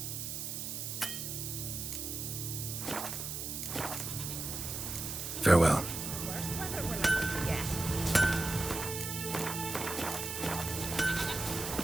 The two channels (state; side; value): noise; right; hiss, 4 dB below the sound